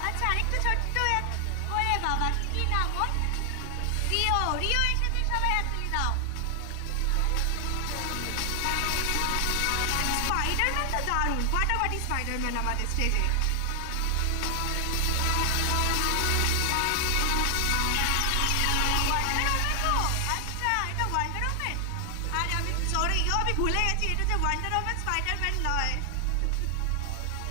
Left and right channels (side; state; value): both; different; correlation 0.00